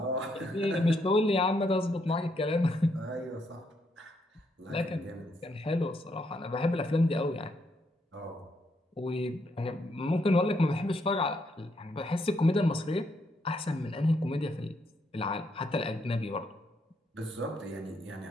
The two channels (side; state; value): both; normal; correlation 0.75